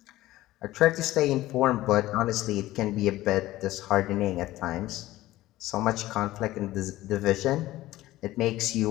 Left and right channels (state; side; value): quieter; right; 16.2 dB